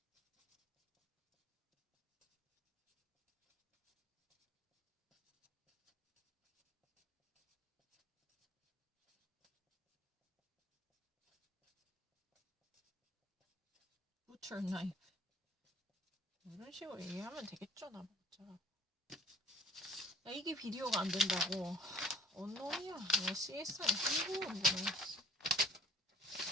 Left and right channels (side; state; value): both; normal; correlation 0.50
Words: Butcher knife. 이런 식으로 얘기하면 되겠죠, 나보자. 야, 이게 비디오가 안 된다고. 언놈이야. 야, CSR 신고 온 거네.